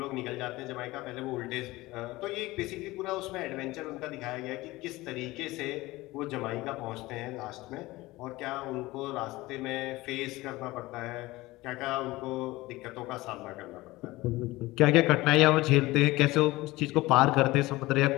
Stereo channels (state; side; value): quieter; right; 19.6 dB